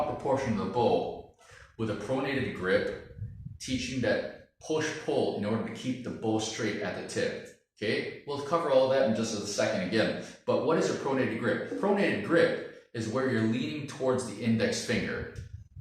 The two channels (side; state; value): both; identical; correlation 1.00